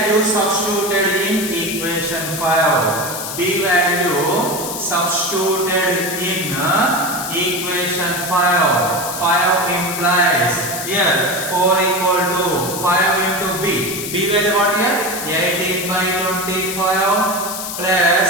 substituted in equation 5. B value substituted in equation 5. 5 implies here 4 equal to 5 into b. B value what here? 18 by 25 plus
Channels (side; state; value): left; noise; hiss, 6 dB below the sound